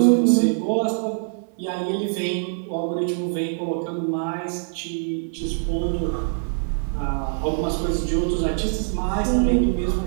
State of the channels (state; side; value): silent; left; digital silence